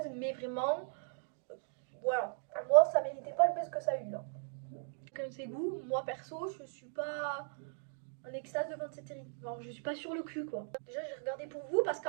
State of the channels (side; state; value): left; silent; digital silence